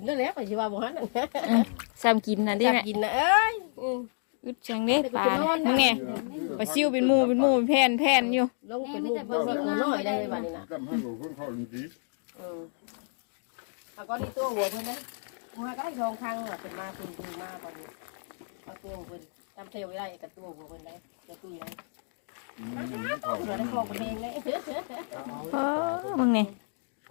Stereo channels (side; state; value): right; silent; digital silence